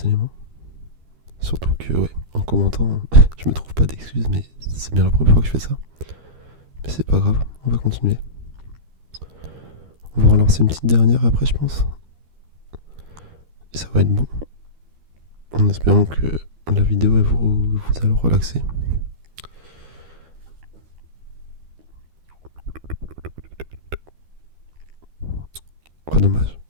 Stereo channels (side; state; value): left; late; 13 ms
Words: éléments. Surtout que, ouais, en commentant, je me trouve pas d'excuses, mais c'est bien la première fois que je fais ça. Mais c'est pas grave, on va continuer. On va relancer une petite dernière après, je pense. Et ça va être bon. En espérant que la vidéo elle vous allez relaxer. Oh, dommage.